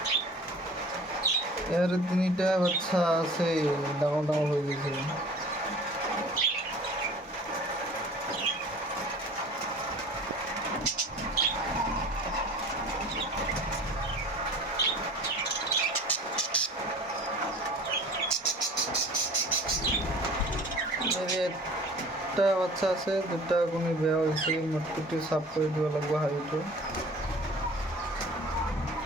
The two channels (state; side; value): normal; both; correlation 0.44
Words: ইয়াৰ 3টা বাচ্চা আছে, ডাঙৰ ডাঙৰ হৈ গৈছে। একটা বাচ্চা আছে, 2টা কণী বেয়া হৈছে। মটকুটি চাফ কৰি দিব লাগিব হাঁড়িটো।